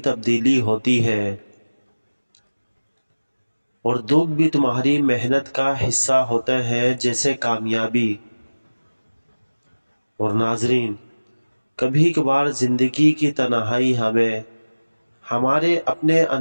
ہوتی ہے، اور دکھ بھی تمہاری محنت کا حصہ ہوتا ہے جیسے کامیابی۔ اور ناظرین، کبھی کبھار زندگی کی تنہائی ہمیں ہمارے اپنے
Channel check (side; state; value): both; inverted; correlation -1.00